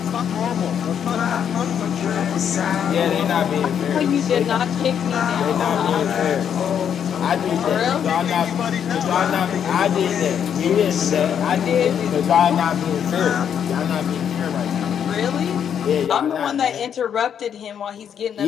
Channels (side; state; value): right; quieter; 8.5 dB